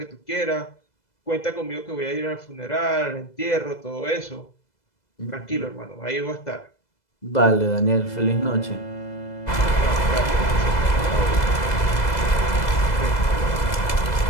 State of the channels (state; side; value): late; right; 2.0 ms